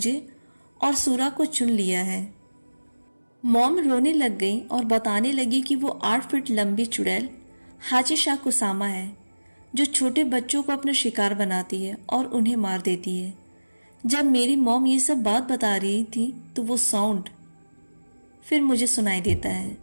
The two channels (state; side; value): inverted; both; correlation -1.00